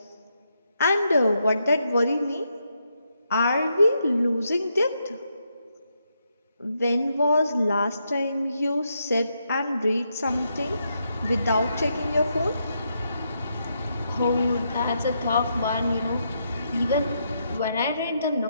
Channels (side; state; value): both; inverted; correlation -0.80